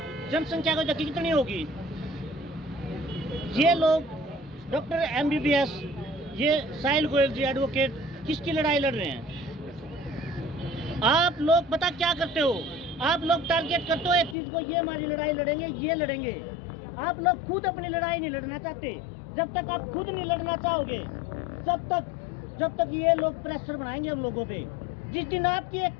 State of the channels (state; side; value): drops out; right; at 14.4 s